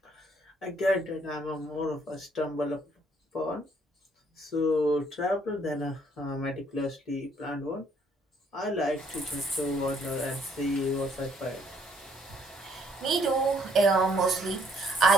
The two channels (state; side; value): normal; both; correlation 0.66